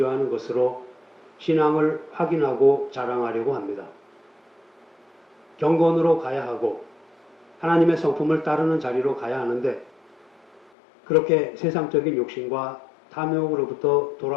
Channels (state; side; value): drops out; right; at 10.7 s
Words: 것으로 신앙을 확인하고 자랑하려고 합니다. 경건으로 가야 하고 하나님의 성품을 따르는 자리로 가야 하는데 그렇게 세상적인 욕심과 탐욕으로부터